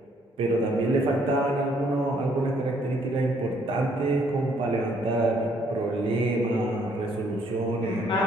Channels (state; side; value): normal; both; correlation 0.67